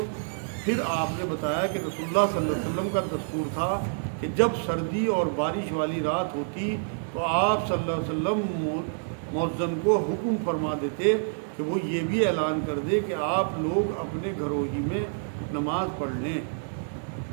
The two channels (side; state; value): left; silent; digital silence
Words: پھر آپ نے بتایا کہ رسول اللہ صلی اللہ علیہ وسلم کا دستور تھا کہ جب سردی اور بارش والی رات ہوتی تو آپ صلی اللہ علیہ وسلم مؤذن کو حکم فرما دیتے کہ وہ یہ بھی اعلان کر دے کہ آپ لوگ اپنے گھروں ہی میں نماز پڑھ لیں۔